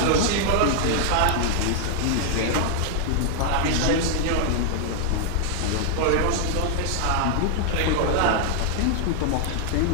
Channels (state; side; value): different; both; correlation -0.01